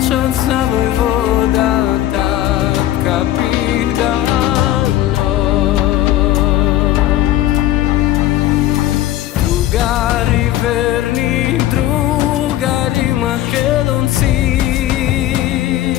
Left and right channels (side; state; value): right; quieter; 13.6 dB